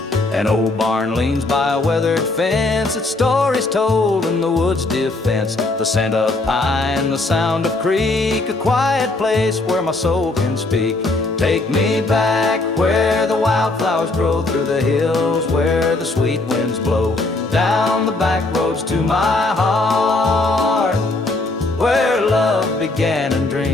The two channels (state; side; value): quieter; right; 3.1 dB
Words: An old barn leans by a weathered fence, its stories told in the woods' defense. The scent of pine, the sound of creek, a quiet place where my soul can speak. Take me back where the wildflowers grow, through the hills where the sweet winds blow, down the back roads to my heart, where love began and